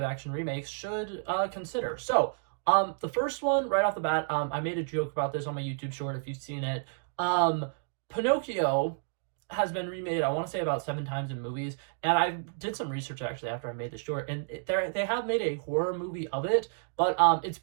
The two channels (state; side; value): silent; left; digital silence